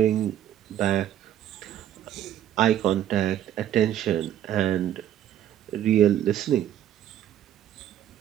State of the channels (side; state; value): left; quieter; 11.2 dB